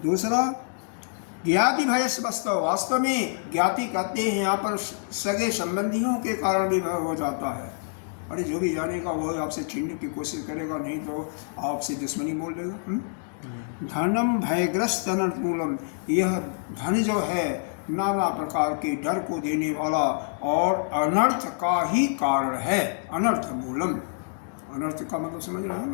दूसरा ज्ञाति भय से वास्तव में ज्ञाति कहते हैं यहाँ पर सगे संबंधियों के कारण भी भय हो जाता है। अरे जो भी जानेगा वो आपसे छीनने की कोशिश करेगा, नहीं तो आपसे दुश्मनी मोल लेगा। धनम भयग्रस्त अनर्थ मूलम, यह धन जो है नाना प्रकार के डर को देने वाला और अनर्थ का ही कारण है। अनर्थ मूलम, अनर्थ का मतलब समझ रहे हो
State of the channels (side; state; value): right; silent; digital silence